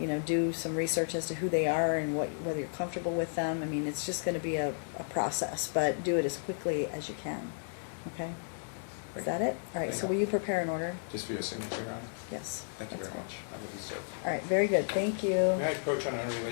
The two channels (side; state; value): right; silent; digital silence